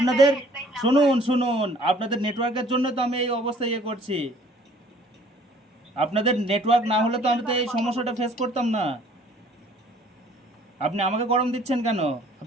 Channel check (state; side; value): normal; both; correlation 0.56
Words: হেল্পলাইন নাম্বার শুনুন আছে। শুনুন, আপনাদের নেটওয়ার্কের জন্য তো আমি এই অবস্থা করছি। আপনাদের নেটওয়ার্ক আমি না হলে তো আমি প্রফেশনাল তো ভাবে এই কথা সমস্যাটা বলছি। ফেস করতাম না। আপনি আমাকে গরম দিচ্ছেন কেন?